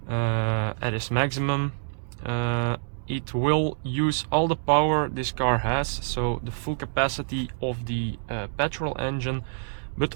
at its maximum, it will use all the power this car has, so the full capacity of the petrol engine, but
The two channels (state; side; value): silent; left; digital silence